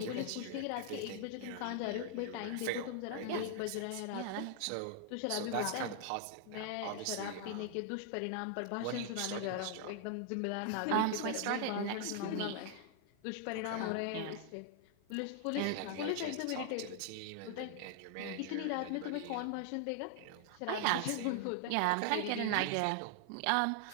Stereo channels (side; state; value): both; different; correlation 0.00